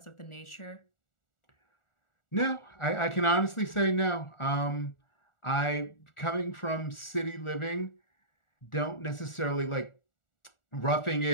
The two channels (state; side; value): late; right; 1.4 ms